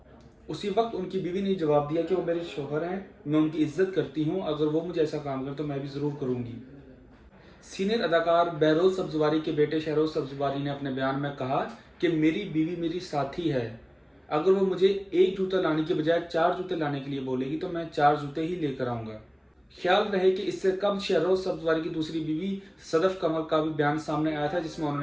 उसी वक्त उनकी बीवी ने जवाब दिया कि वो मेरे शोहर हैं, मैं उनकी इज्जत करती हूँ, अगर वो मुझे ऐसा काम करें तो मैं भी ज़रूर करूँगी। सीनियर अदाकार बहरोज सब्जवारी के बेटे शहरोज सब्जवारी ने अपने बयान में कहा कि मेरी बीवी मेरी साथी है, अगर वो मुझे एक जूता लाने के बजाय चार जूते लाने के लिए बोलेगी तो मैं चार जूते ही लेकर आऊंगा। ख्याल रहे कि इससे कब शहरोज सब्जवारी की दूसरी बीवी सदफ कमर का भी बयान सामने आया था, जिसमें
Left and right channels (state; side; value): identical; both; correlation 1.00